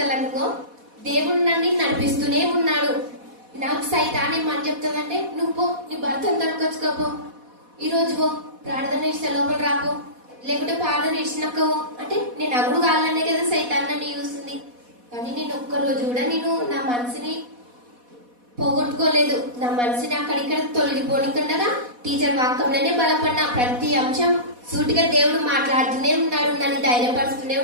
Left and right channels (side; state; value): left; late; 4.1 ms